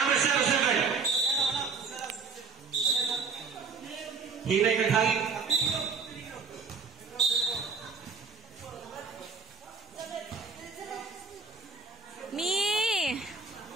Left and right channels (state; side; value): quieter; left; 5.0 dB